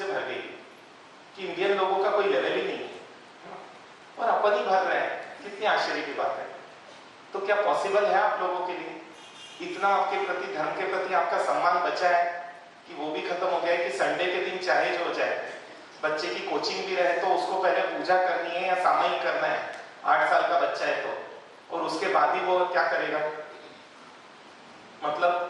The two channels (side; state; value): both; identical; correlation 1.00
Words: भर गई कि इंडियन लोगों का कोई लेवल ही नहीं है, और अपन ही भर रहे हैं। कितनी आश्चर्य की बात है। तो क्या पॉसिबल है आप लोगों के लिए इतना आपके प्रति, धर्म के प्रति आपका सम्मान बचा है कि वो भी खत्म हो गया है कि संडे के दिन चाहे जो हो जाए, बच्चे की कोचिंग भी रहे तो उसको पहले पूजा करनी है या सामयिक करना है, 8 साल का बच्चा है तो, और उसके बाद ही वो क्या करेगा,